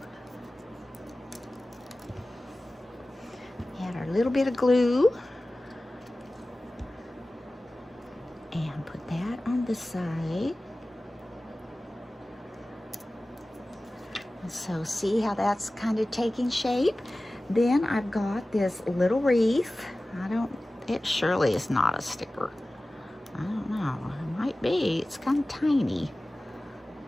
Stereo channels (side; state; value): both; normal; correlation 0.97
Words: Add our little bit of glue. And put that on the side. And so see how that's kind of taking shape? Then I've got this little wreath. It surely is not a sticker. I don't know, it might be, it's kind of tiny.